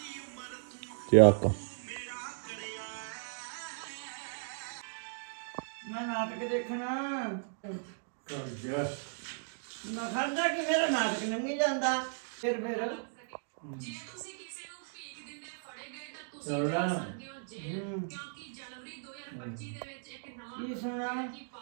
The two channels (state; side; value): silent; left; digital silence